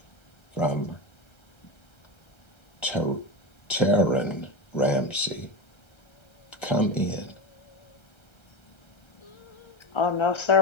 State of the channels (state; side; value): late; right; 1.3 ms